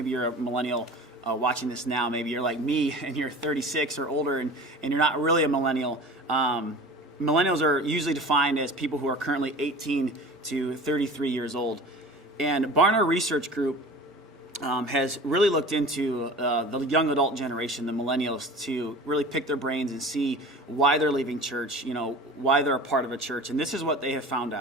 you're a millennial watching this now. Maybe you're like me and you're 36 or older and you're not really a millennial. Millennials are usually defined as people who are currently 18 to 33 years old. And Barna Research Group has really looked into the young adult generation, the millennials, to really pick their brains and see why they're leaving church, why they're a part of a church. And this is what they have found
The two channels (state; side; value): normal; both; correlation 0.38